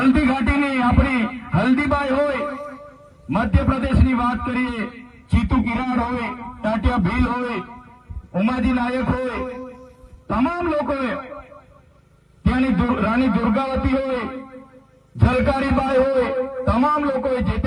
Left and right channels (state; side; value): identical; both; correlation 1.00